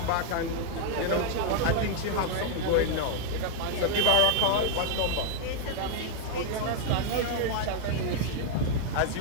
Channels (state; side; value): different; both; correlation 0.00